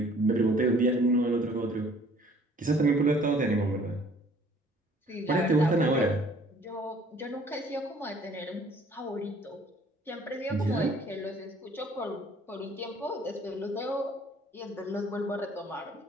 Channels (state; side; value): normal; both; correlation 0.56